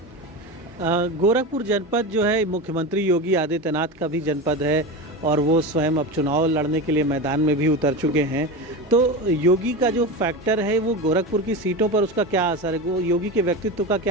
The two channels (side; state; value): both; normal; correlation 0.23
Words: गोरखपुर जनपद जो है मुख्यमंत्री योगी आदित्यनाथ का भी जनपद है और वो स्वयं अब चुनाव लड़ने के लिए मैदान में भी उतर चुके हैं। तो योगी का जो फैक्टर है वो गोरखपुर की सीटों पर उसका क्या असर है? योगी के व्यक्तित्व का